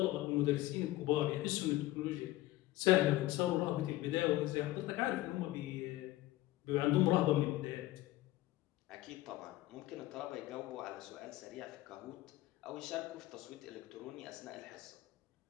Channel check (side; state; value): right; quieter; 16.9 dB